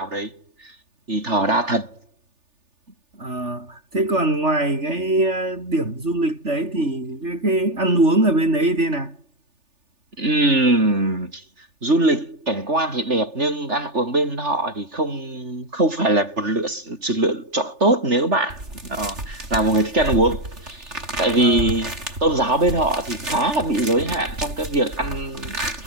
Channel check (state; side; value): late; left; 3.4 ms